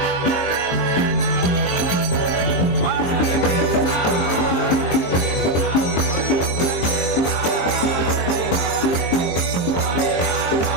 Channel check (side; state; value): right; late; 23 ms